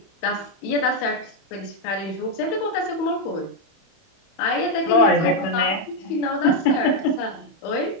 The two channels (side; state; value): right; late; 31 ms